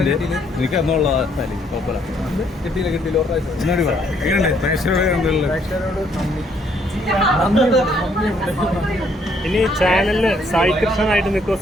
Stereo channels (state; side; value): normal; both; correlation 0.68